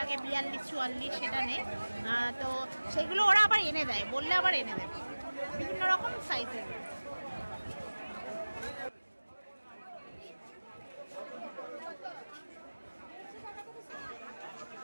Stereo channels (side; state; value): both; inverted; correlation -1.00